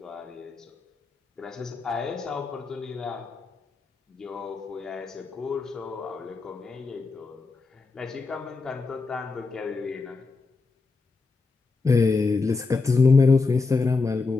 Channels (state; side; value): quieter; right; 4.1 dB